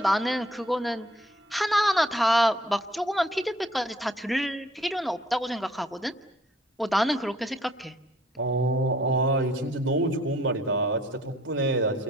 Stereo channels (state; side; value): normal; both; correlation 0.60